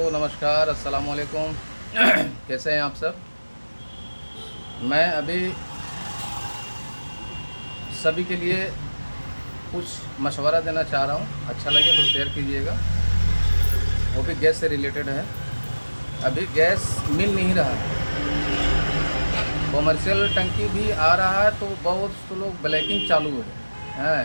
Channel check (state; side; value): inverted; both; correlation -1.00